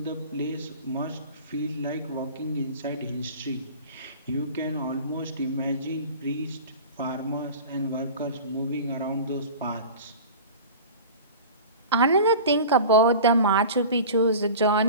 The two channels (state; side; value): inverted; both; correlation -0.36